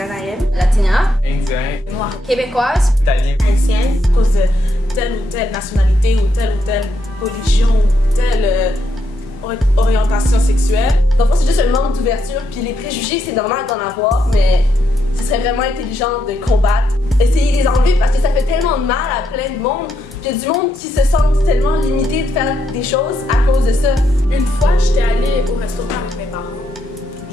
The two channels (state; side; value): normal; both; correlation 0.79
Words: latina, Indien, Noire, québécoise, italien. haïtienne. à cause de telle ou telle nationalité ou telle religion ou telle orientation sexuelle. dans le fond, c'est juste un manque d'ouverture, puis les préjugés, c'est normal d'en avoir, mais ce serait vraiment intelligent de combattre. Essayer de les enlever parce que ça fait tellement de mal à plein de monde. Puis il y a du monde qui se sentent tellement limité de faire des choses à cause de ça. Une fois, j'étais allée au restaurant avec mes parents.